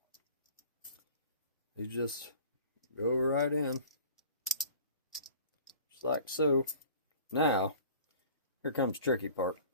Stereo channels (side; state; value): both; inverted; correlation -0.47